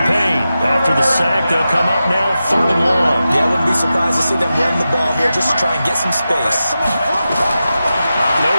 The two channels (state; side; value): inverted; both; correlation -0.92